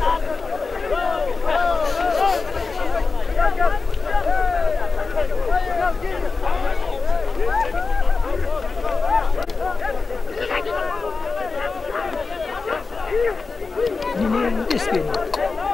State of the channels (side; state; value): right; quieter; 4.3 dB